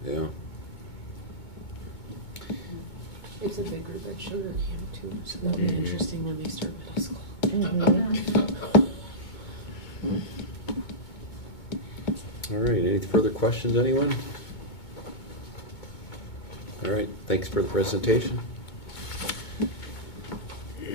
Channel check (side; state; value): right; late; 2.2 ms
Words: yeah. It's a big group at Sugar Camp too, so that'll be interesting when they start middle school. Mhm. All right, any further questions, anyone? All right, thanks for the presentation.